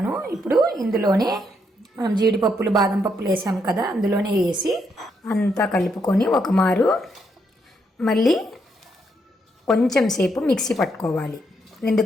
ఇప్పుడు ఇందులోనే మనం జీడిపప్పులు, బాదం పప్పులు వేసాం కదా, అందులోనే వేసి అంతా కలుపుకొని ఒక మారు మళ్ళీ కొంచెం సేపు మిక్సీ పట్టుకోవాలి.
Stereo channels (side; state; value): both; normal; correlation 0.77